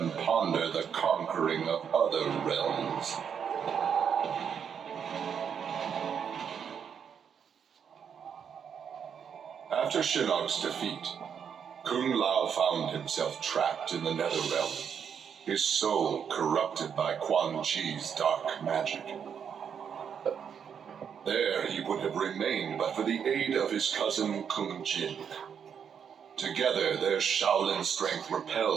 ponder the conquering of other realms. After Shinnok's defeat, Kung Lao found himself trapped in the Netherrealm, his soul corrupted by Quan Chi's dark magic. There he would have remained but for the aid of his cousin Kung Jin. Together, their Shaolin strength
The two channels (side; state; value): left; quieter; 7.5 dB